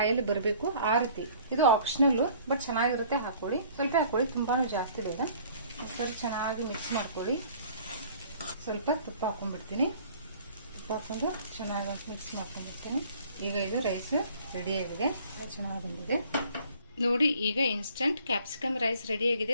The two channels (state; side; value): inverted; both; correlation -0.54